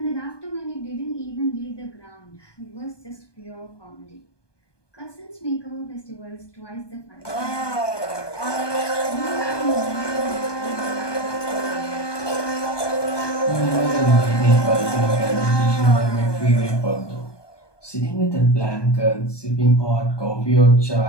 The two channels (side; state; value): right; late; 1.2 ms